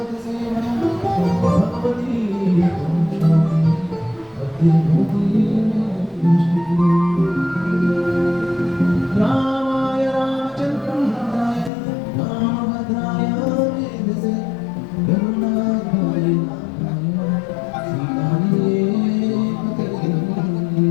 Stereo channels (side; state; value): right; drops out; at 11.7 s